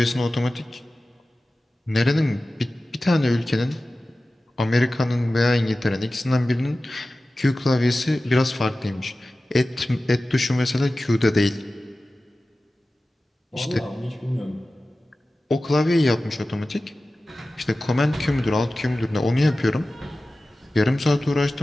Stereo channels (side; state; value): both; normal; correlation 0.96